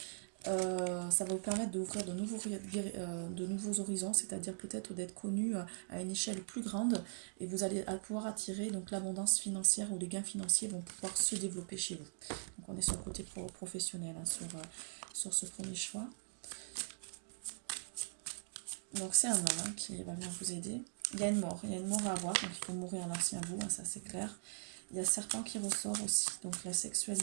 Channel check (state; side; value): silent; left; digital silence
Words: Ça va vous permettre d'ouvrir de nouveaux horizons, c'est-à-dire peut-être d'être connu à une échelle plus grande et vous allez pouvoir attirer donc l'abondance financière ou les gains financiers vont pouvoir se développer chez vous. Donc on est sur le côté professionnel hein, sur ce premier choix. Donc c'est un homme hein, qui va venir vous aider. Il y a une mort à avoir, donc il faut mourir à l'ancien vous, hein, ça c'est clair. Il y a serpent qui ressort aussi, donc la